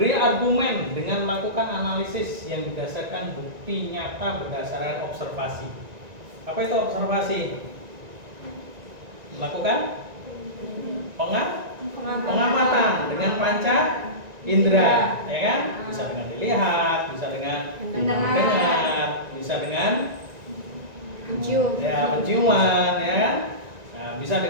argumen dengan melakukan analisis yang berdasarkan bukti nyata berdasarkan observasi. Apa itu observasi? Lakukan pengamatan dengan panca indera, ya kan? Bisa dengan dilihat, bisa dengan mendengar, bisa dengan penciuman, ya kan? Nah, bisa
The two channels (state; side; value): late; left; 1.9 ms